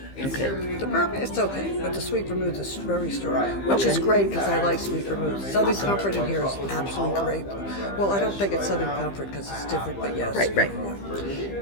Okay. The bourbon, it's okay, but the sweet vermouth is very strong, which is great because I like sweet vermouth. Southern Comfort in here is absolutely great. Well, I don't think it's Southern Comfort because it's different, but yes. Right. Yeah.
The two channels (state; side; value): late; right; 15 ms